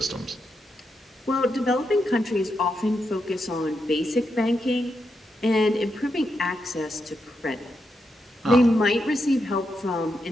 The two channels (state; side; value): normal; both; correlation 0.84